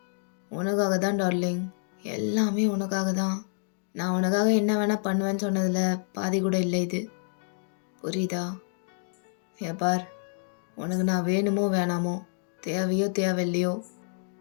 உனக்காக தான் டார்லிங். எல்லாமே உனக்காக தான். நான் உனக்காக என்ன வேணால் பண்ணுவேன்னு சொன்னதில் பாதி கூட இல்லை இது. புரியுதா? பார், உனக்கு நான் வேணுமோ வேணாமோ, தேவையோ தேவையில்லையோ,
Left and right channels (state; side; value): silent; right; 59 dB below the other